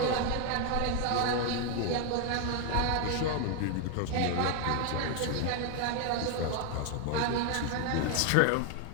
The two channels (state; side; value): different; both; correlation 0.01